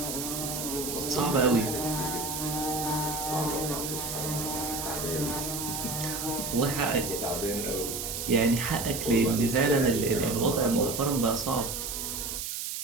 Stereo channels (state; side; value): noise; right; hiss, 4 dB below the sound